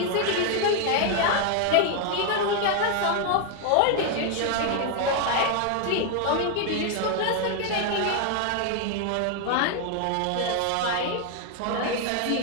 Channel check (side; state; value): both; different; correlation 0.00